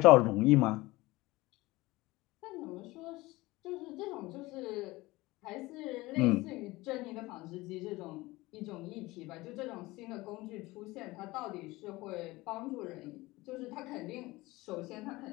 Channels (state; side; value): quieter; right; 20.3 dB